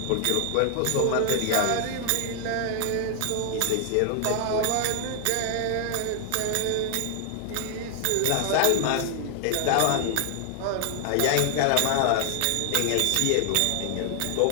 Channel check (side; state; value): both; different; correlation 0.00